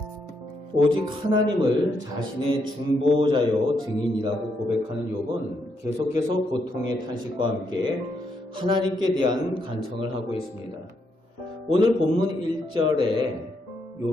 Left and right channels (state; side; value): normal; both; correlation 0.78